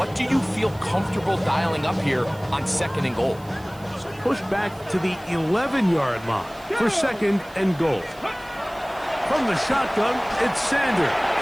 do you feel comfortable dialing up here on 2nd and goal. Push back to the 11-yard line for 2nd and goal. From the shotgun, it's Sanders.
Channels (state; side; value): noise; right; hiss, 24 dB below the sound